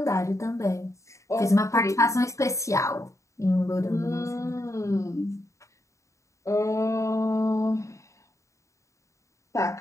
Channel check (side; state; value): right; late; 0.15 ms